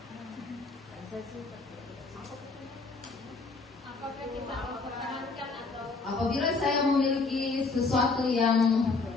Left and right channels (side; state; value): right; quieter; 4.0 dB